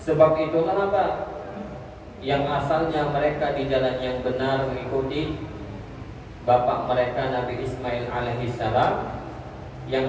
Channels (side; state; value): both; identical; correlation 1.00